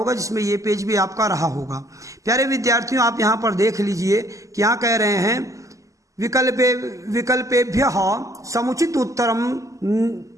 जिसमें ये पेज भी आपका रहा होगा। प्यारे विद्यार्थियों, आप यहाँ पर देख लीजिए कि यहाँ कह रहे हैं विकल्पेभ्यः समुचित उत्तरम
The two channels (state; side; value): late; left; 0.16 ms